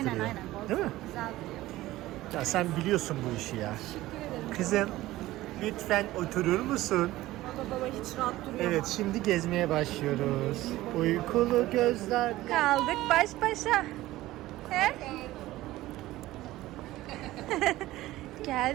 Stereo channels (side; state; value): left; quieter; 16.6 dB